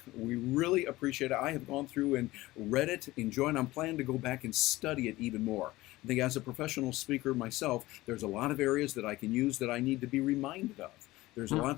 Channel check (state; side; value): quieter; right; 18.5 dB